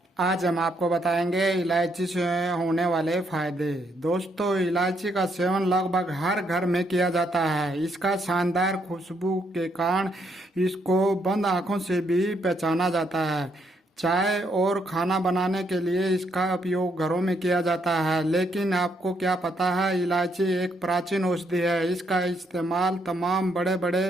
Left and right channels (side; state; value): both; normal; correlation 0.74